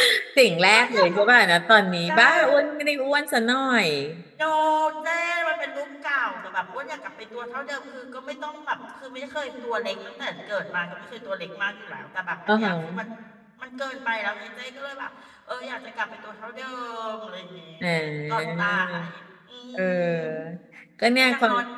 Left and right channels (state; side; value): identical; both; correlation 1.00